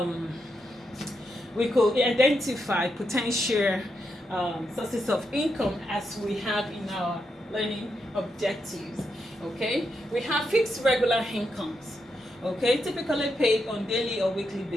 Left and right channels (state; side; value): normal; both; correlation 0.83